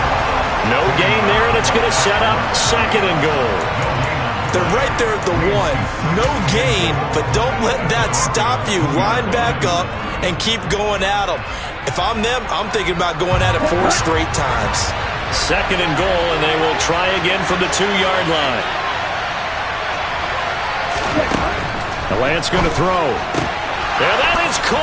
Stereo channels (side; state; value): both; identical; correlation 1.00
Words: No gain there, and it's going to set up 2nd and goal. They're right there at the 1. No gain, but don't let that stop you. Line back up and keep going at them. If I'm them, I'm thinking about going at it 4 straight times. 2nd and goal, and they will try again from the 2-yard line. The Lance going to throw. And that is